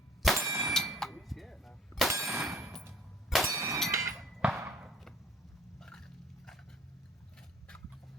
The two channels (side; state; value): both; normal; correlation 0.52